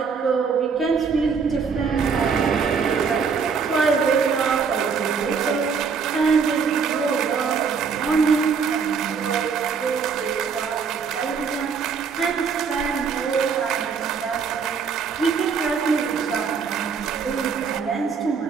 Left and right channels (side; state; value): left; quieter; 5.8 dB